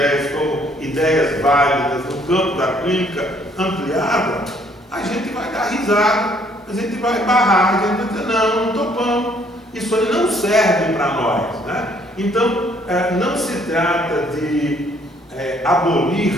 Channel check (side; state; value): both; normal; correlation 0.64